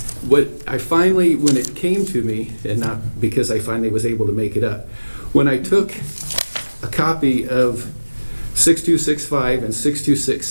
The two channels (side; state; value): both; inverted; correlation -1.00